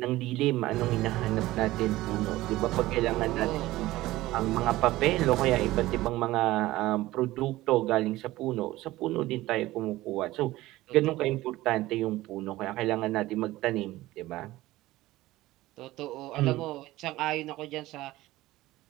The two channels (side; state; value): left; quieter; 17.3 dB